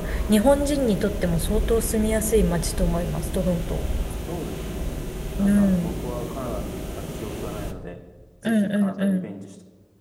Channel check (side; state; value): both; identical; correlation 1.00